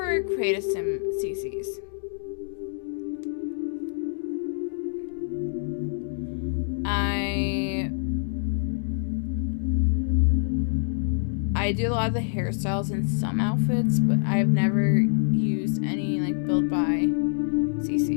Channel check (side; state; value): right; silent; digital silence